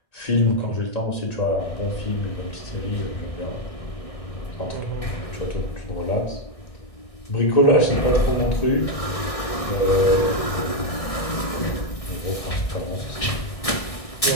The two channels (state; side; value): late; right; 1.6 ms